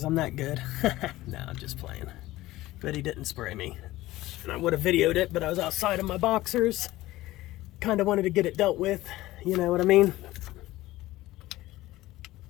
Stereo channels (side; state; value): right; quieter; 17.1 dB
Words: I'm that good. No, I'm just playing. But he didn't spray me. And I would have videoed it, but I was outside of my boxers. Kind of wanted to get it dealt with, you know what I mean?